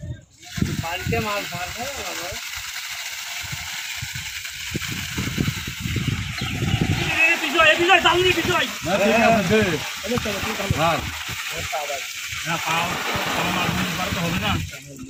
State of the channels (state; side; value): identical; both; correlation 1.00